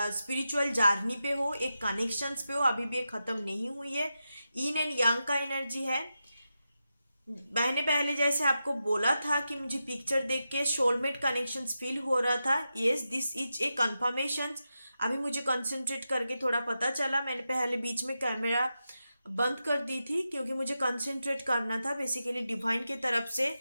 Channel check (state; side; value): inverted; both; correlation -0.90